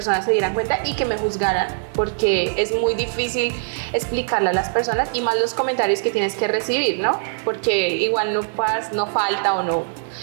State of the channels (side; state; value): left; silent; digital silence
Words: se dieran cuenta y que me juzgaran, porque es muy difícil explicarle a las personas y más los comentarios que tienes que recibir, ¿no? Porque igual no falta o no